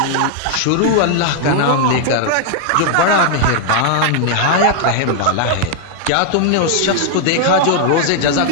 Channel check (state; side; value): different; both; correlation 0.00